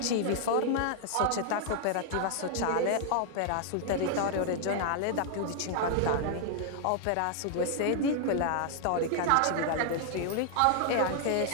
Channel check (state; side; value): different; both; correlation 0.00